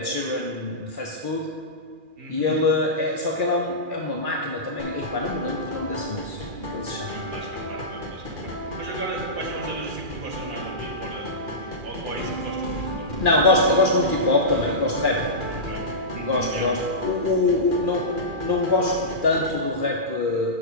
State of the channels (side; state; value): left; late; 2.4 ms